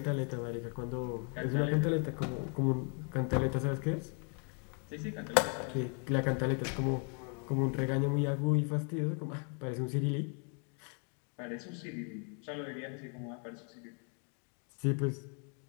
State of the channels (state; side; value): quieter; right; 39.6 dB